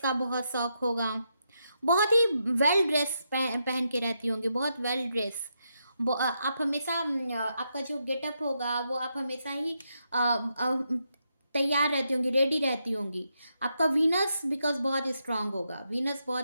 बहुत शौक होगा, बहुत ही वेल ड्रेस पहन के रहती होंगी, बहुत वेल ड्रेस। आप हमेशा आपका जो गेटअप होगा वो आप हमेशा ही तैयार रहती होंगी, रेडी रहती होंगी। आपका वीनस बिकॉज बहुत स्ट्रांग होगा, वीनस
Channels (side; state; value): both; inverted; correlation -0.82